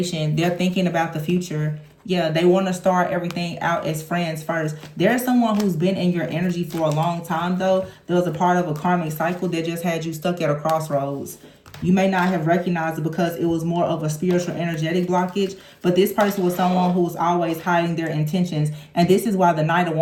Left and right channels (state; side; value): identical; both; correlation 1.00